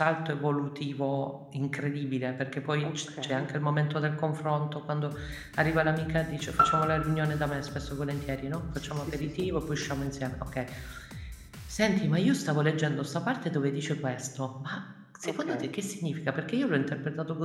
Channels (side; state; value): both; identical; correlation 1.00